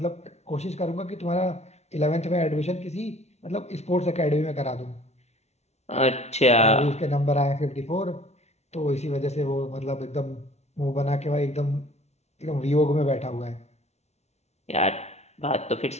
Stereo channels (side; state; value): right; late; 0.32 ms